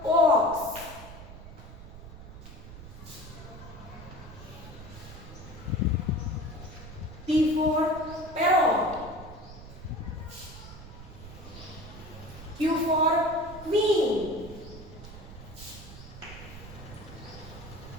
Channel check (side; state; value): right; noise; rumble, 14 dB below the sound